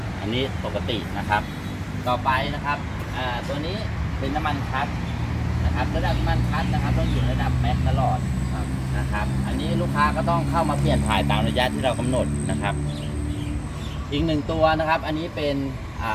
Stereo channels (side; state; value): both; identical; correlation 1.00